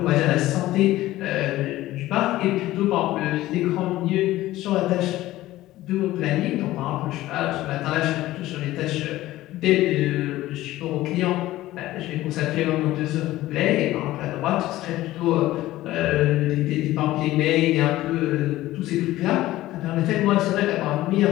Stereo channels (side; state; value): right; quieter; 16.1 dB